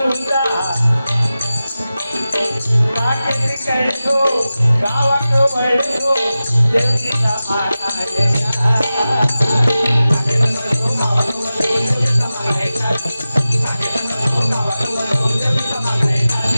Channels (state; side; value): inverted; both; correlation -0.95